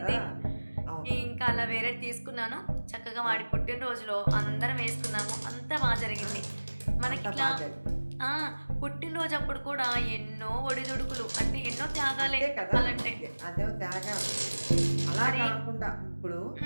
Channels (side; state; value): both; inverted; correlation -1.00